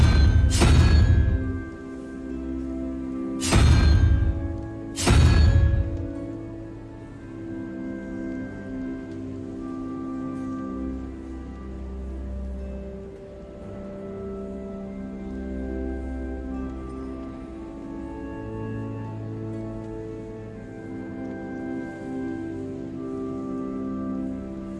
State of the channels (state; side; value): identical; both; correlation 1.00